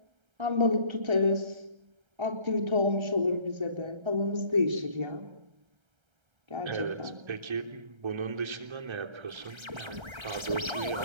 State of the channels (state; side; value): late; left; 1.3 ms